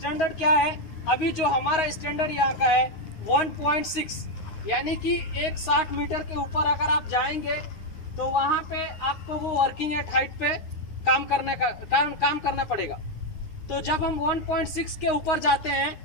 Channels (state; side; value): late; right; 9.5 ms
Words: क्या है? अभी जो हमारा स्टैंडर्ड यहाँ का है 1.6, यानी कि 160 मीटर के ऊपर अगर आप जाएंगे तो वहाँ पे आपको वो वर्किंग एट हाइट पे काम करना पड़ेगा। तो जब हम 1.6 के ऊपर जाते हैं